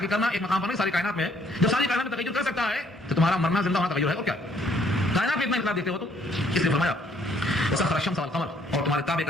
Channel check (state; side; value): normal; both; correlation 0.65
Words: کرنا ایک مقام پر نہیں, ساری کائنات میں ہے. جب ساری کائنات میں تغیر کر سکتا ہے تو تمہارا مرنا زندہ ہونا تغیر ہے. اور کیا کائنات میں اتنا انقلاب دیکھتے ہو تو اس لیے فرمایا وسخر الشمس والقمر, اور تمہارے تابع